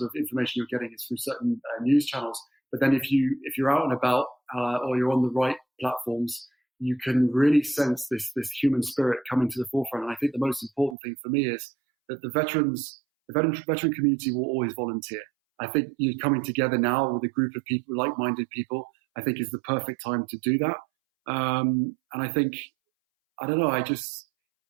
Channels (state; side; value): drops out; left; at 11.0 s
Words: of information you're getting is through certain news channels. But then if you're out and about or you're on the right platforms, you can really sense this human spirit coming to the forefront. And I think the most important thing for me is that the veteran community will always volunteer. I think you coming together now with a group of people, like-minded people, I think is the perfect time to do that. And I think, I don't know, as